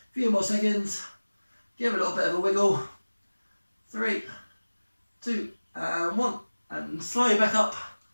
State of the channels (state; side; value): inverted; both; correlation -1.00